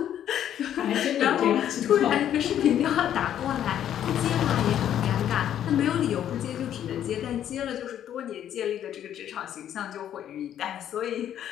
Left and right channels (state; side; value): quieter; right; 10.5 dB